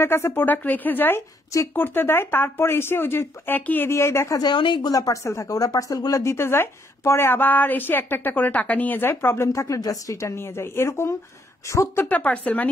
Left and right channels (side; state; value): both; normal; correlation 0.71